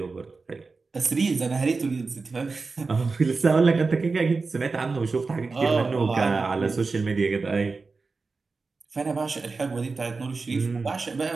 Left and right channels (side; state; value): left; quieter; 4.2 dB